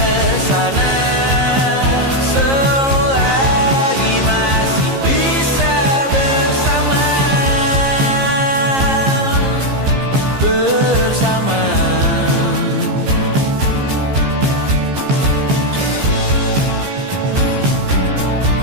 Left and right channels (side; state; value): left; late; 15 ms